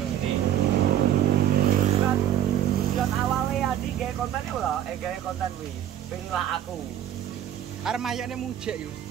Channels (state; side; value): quieter; left; 10.8 dB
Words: Tujuan awalnya Andi gawe konten itu lho, gawe konten kuwi. Pengen lah aku. Arep mayone mujek yo.